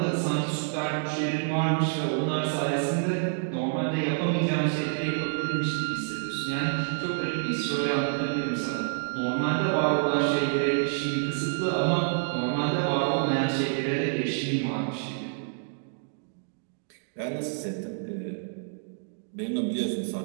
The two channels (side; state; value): left; silent; digital silence